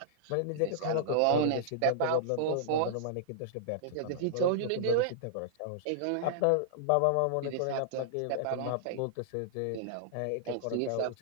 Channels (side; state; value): both; different; correlation -0.02